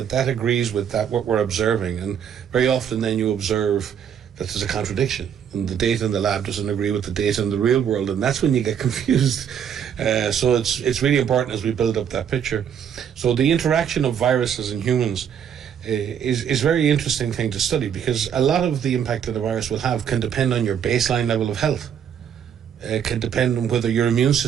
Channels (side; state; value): left; quieter; 8.4 dB